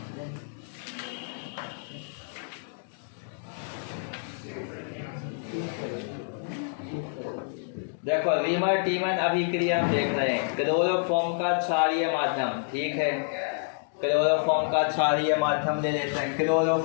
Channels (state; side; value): silent; right; digital silence